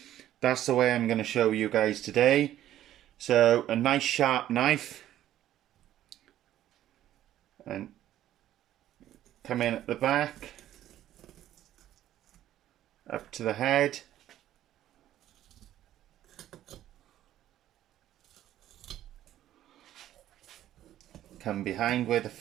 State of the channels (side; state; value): left; quieter; 12.6 dB